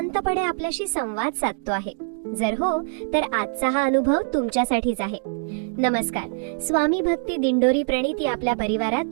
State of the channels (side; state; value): left; silent; 63 dB below the other